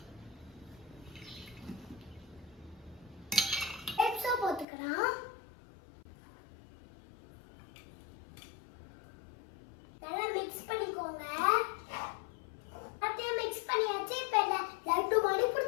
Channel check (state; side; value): drops out; right; at 4.7 s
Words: போட்டுக்கலாம். நல்லா மிக்ஸ் பண்ணிக்கோங்க. அப்படியே மிக்ஸ் பண்ணியாச்சு. இப்ப லட்டு மாதிரி